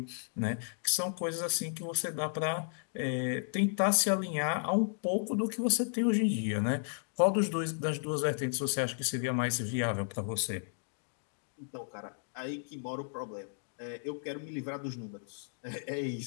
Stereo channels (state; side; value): silent; right; digital silence